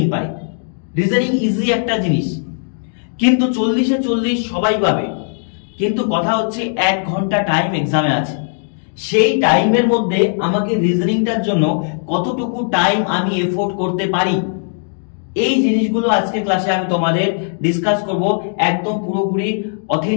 পারে, রিজনিং ইজি একটা জিনিস, কিন্তু 40-এ 40 সবাই পাবে। কিন্তু কথা হচ্ছে 1 ঘন্টা টাইম এক্সামে আছে, সেই টাইমের মধ্যে আমাকে রিজনিংটার জন্য কতটুকু টাইম আমি এফোর্ড করতে পারি, এই জিনিসগুলো আজকে ক্লাসে আমি তোমাদের ডিসকাস করব, একদম পুরোপুরি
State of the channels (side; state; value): right; silent; 64 dB below the other